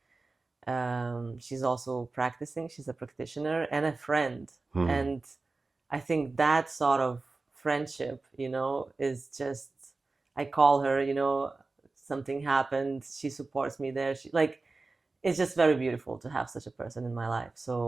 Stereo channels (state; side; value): quieter; left; 3.6 dB